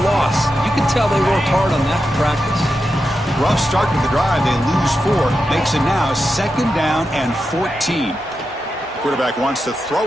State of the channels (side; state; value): both; normal; correlation 0.89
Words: loss. You can tell they worked hard on that in practice. Rough start to the drive. They lose 4. Makes it now 2nd down and 14. Quarterback wants to